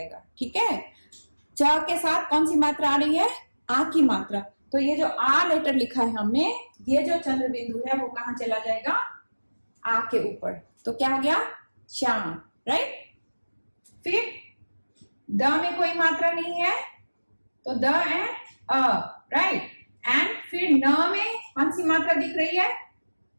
ठीक है। च के साथ कौन सी मात्रा आ रही है, आ की मात्रा। तो ये जो आ लेटर लिखा है हमने, ये जो चंद्र बिंदु है वो कहां चला जाएगा, आ के ऊपर। तो क्या हो गया, चांद, राइट। फिर द में कोई मात्रा नहीं है तो the end a, right. And फिर न में कौन सी मात्रा दिख रही है,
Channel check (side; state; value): both; inverted; correlation -1.00